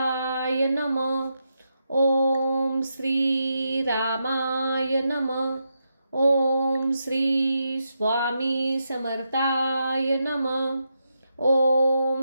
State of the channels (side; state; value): both; inverted; correlation -0.84